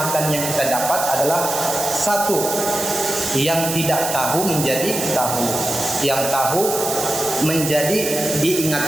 yang kita dapat adalah satu, yang tidak tahu menjadi tahu, yang tahu menjadi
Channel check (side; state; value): right; noise; hiss, 4 dB below the sound